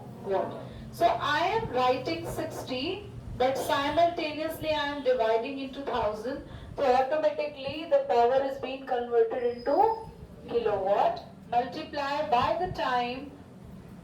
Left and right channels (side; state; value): both; identical; correlation 1.00